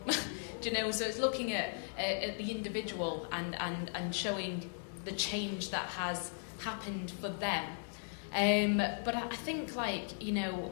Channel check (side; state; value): right; silent; digital silence